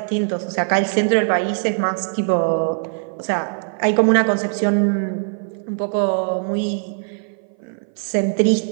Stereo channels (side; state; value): left; silent; 58 dB below the other